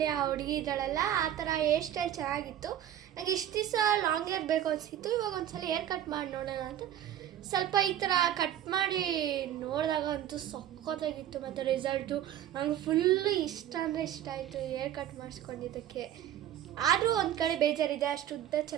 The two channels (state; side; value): quieter; left; 11.2 dB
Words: ಆ ಹುಡುಗಿ ಇದ್ದಾಳಲ್ಲ, ಆ ಥರ ಹೇರ್ ಸ್ಟೈಲ್ ಚೆನ್ನಾಗಿತ್ತು. ನನಗೆ ಇಷ್ಟು ದಿವಸ ಲಾಂಗ್ ಹೇರ್ ಬೇಕು ಅನಿಸಿತ್ತು. ಇವಾಗ ಒಂದ್ಸಲ ಹೇರ್ ಕಟ್ ಮಾಡಿ ನೋಡೋಣ ಅಂತ ಸ್ವಲ್ಪ ಈ ಥರ ಕಟ್ ಮಾಡಿ ನೋಡಿದಾಗ ಅಂತೂ ಸಖತ್ತಾಗಿತ್ತು. ಮತ್ತು ರಿಸಲ್ಟು ನಂಗೆ ಫುಲ್ಲು ಇಷ್ಟ ಅಂದರೆ ಇಷ್ಟ ಆಯಿತು ಹೇರ್ ಕಟ್ ಮಾಡಿಸ್ಕೊಂಡಿದ್ದಕ್ಕೆ. ಆದರೂ ಒಂದು ಕಡೆ ಬೇಜಾರಿದೆ, ಅಷ್ಟು ಉದ್ದ